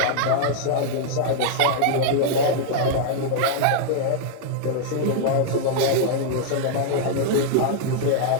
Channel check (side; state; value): both; different; correlation -0.01